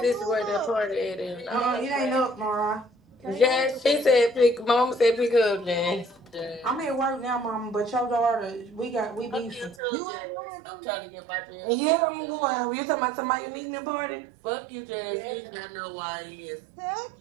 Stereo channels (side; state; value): left; drops out; at 9.8 s